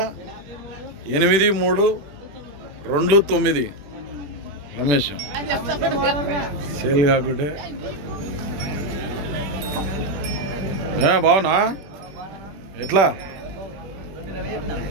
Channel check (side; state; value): left; late; 21 ms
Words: రమేష్. సేల్ కాకుంటే బావునా? ఎట్లా?